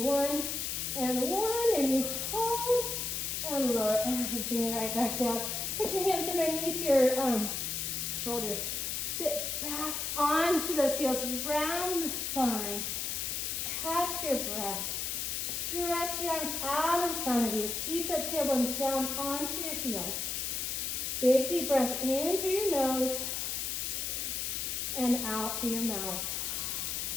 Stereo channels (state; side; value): noise; left; hiss, 2 dB below the sound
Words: 1 and 1. And you hold and lower everything right back down. Put your hands underneath your shoulders. Sit back onto those heels, round the spine. Catch your breath. Stretch your arms out in front of you. Keep that tailbone down onto your heels. Big deep breath in through your nose and out through your mouth.